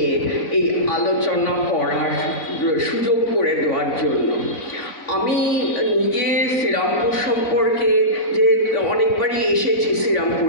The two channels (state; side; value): late; right; 4.0 ms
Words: এই আলোচনা করার সুযোগ করে দেওয়ার জন্য। আমি নিজে শ্রীরামপুর সম্পর্কে যে অনেকবারই এসেছি